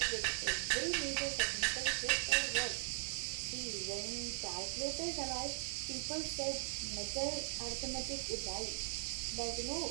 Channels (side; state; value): left; silent; digital silence